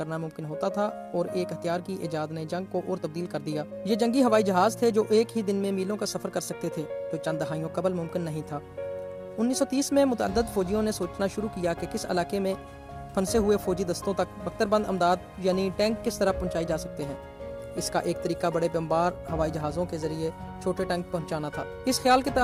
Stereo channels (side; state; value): both; identical; correlation 1.00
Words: ممکن ہوتا تھا، اور ایک ہتھیار کی ایجاد نے جنگ کو اور تبدیل کر دیا۔ یہ جنگی ہوائی جہاز تھے جو ایک ہی دن میں میلوں کا سفر کر سکتے تھے، جو چند دہائیوں قبل ممکن نہیں تھا۔ 1930 میں متعدد فوجیوں نے سوچنا شروع کیا کہ کس علاقے میں پھنسے ہوئے فوجی دستوں تک بختربند امداد یعنی ٹینک کس طرح پہنچائی جا سکتے ہیں۔ اس کا ایک طریقہ بڑے بمبار ہوائی جہازوں کے ذریعے چھوٹے ٹینک پہنچانا تھا۔ اس خیال کے